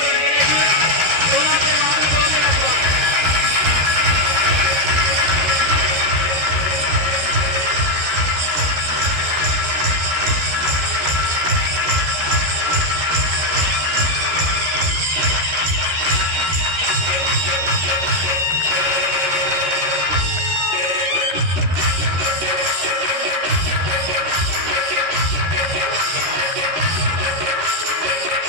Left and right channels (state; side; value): late; left; 13 ms